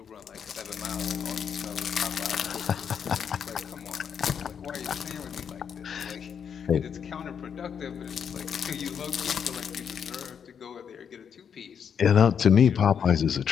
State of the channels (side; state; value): right; quieter; 7.5 dB